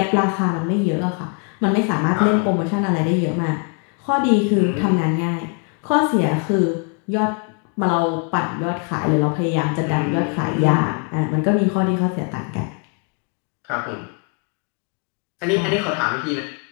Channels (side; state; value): right; quieter; 38.2 dB